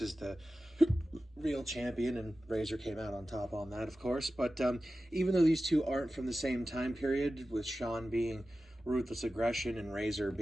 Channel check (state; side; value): normal; both; correlation 0.94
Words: the real champion, and Razor came out on top on that, of course. But even though these two aren't from the same time period, with Shawn being Ruthless Aggression and Razor